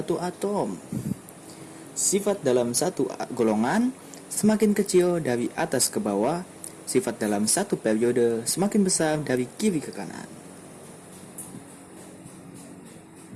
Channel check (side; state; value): both; identical; correlation 1.00